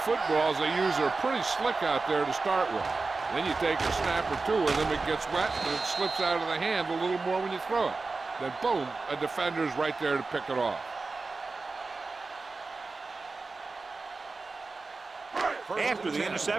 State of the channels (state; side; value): quieter; left; 3.9 dB